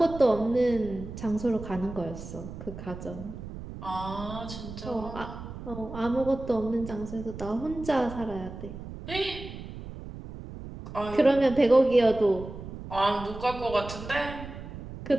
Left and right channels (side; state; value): right; noise; rumble, 11 dB below the sound